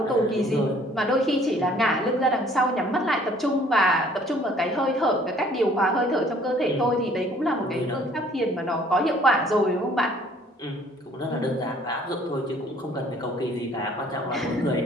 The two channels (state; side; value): normal; both; correlation 0.57